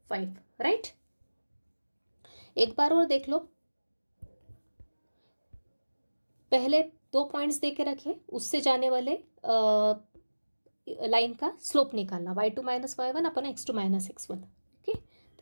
राइट। एक बार और देख लो, पहले 2 पॉइंट्स दे के रखे, उससे जाने वाले लाइन का स्लोप निकालना, y2 माइनस y1 अपन x2 माइनस x1। ओके,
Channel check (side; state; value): both; inverted; correlation -1.00